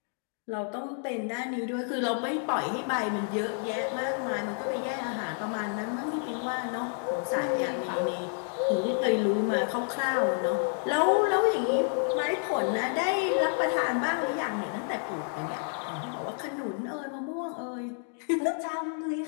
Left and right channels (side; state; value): right; silent; 58 dB below the other